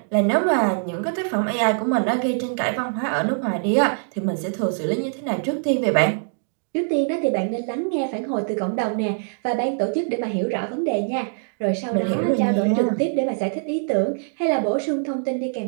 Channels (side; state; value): left; silent; digital silence